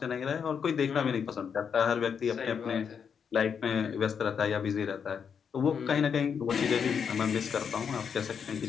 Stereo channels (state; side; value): quieter; right; 7.0 dB